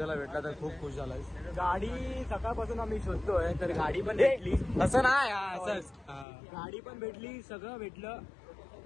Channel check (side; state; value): right; drops out; at 6.2 s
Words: भेटला तर खूप खुश झालाय. गाडी सकाळपासून आम्ही शोधतोय तर गाडी पण भेटली. असं नाही असंच. गाडी पण भेटली सगळं भेटलं.